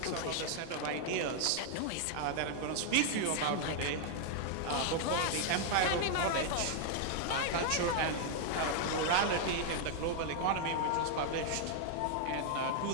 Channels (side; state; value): both; different; correlation 0.00